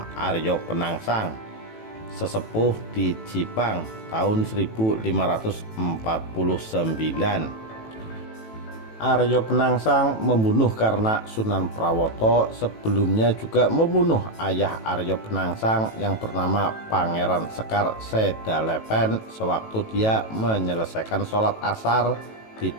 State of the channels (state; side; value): late; right; 18 ms